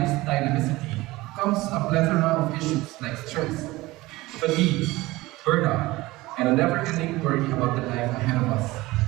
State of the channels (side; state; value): left; quieter; 19.7 dB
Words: dynamicity comes a plethora of issues like stress, fatigue, burnout, and a never-ending worry about the life ahead of us.